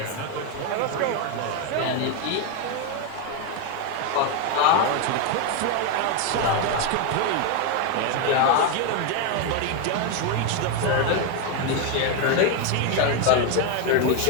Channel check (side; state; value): both; different; correlation 0.02